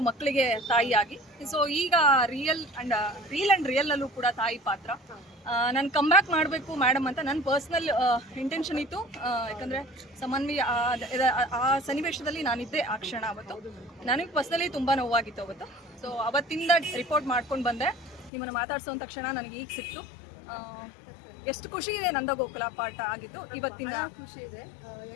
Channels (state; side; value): drops out; right; at 18.3 s